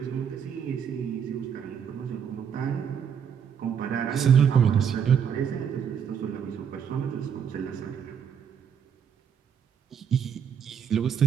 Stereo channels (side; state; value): left; quieter; 7.8 dB